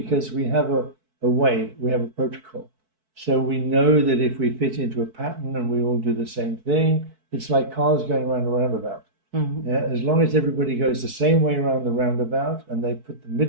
we have a way, we have a protocol. So we know that if we fit into a pattern and we all do the same thing, it's like cars going around a roundabout. As long as everybody goes the same way around the roundabout and they put the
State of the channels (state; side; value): late; left; 4.6 ms